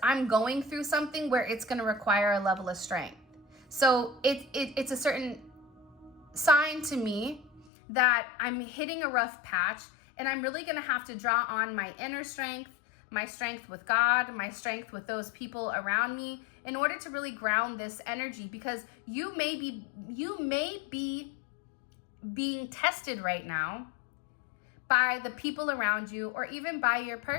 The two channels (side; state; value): right; drops out; at 7.7 s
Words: I'm going through something where it's going to require a level of strength. So it's a certain sign to me that I'm hitting a rough patch and I'm really going to have to draw on my inner strength, my strength with God, my strength with those people around me in order to really ground this energy, because you may be being tested right now by the people around you or even by your